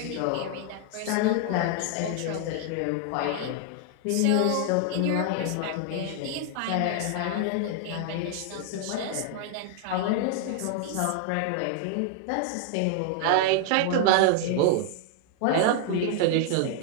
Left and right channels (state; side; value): different; both; correlation 0.00